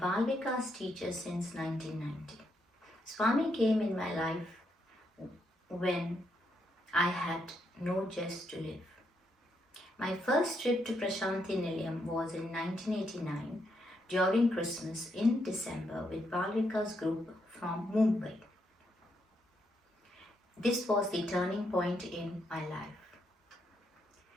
Vikas teacher since 1990. Swami came in my life when I had no zest to live. My first trip to Prashanti Nilayam was in 1989 during Christmas in December with Bal Vikas group from Mumbai. This was the turning point in my life.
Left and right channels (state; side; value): normal; both; correlation 0.78